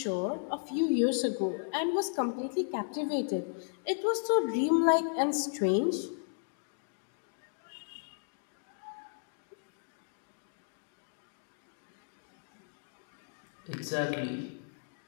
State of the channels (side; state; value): right; silent; digital silence